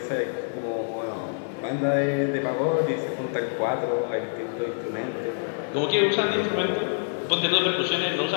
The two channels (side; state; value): right; silent; 61 dB below the other